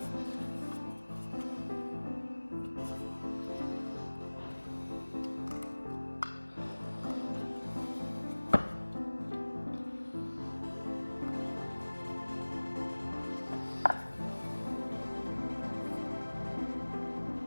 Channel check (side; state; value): both; inverted; correlation -1.00